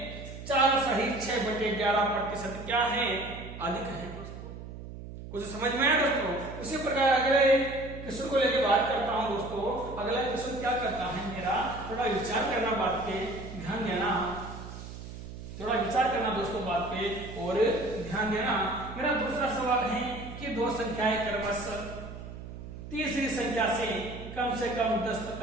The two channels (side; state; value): right; noise; hum, 11 dB below the sound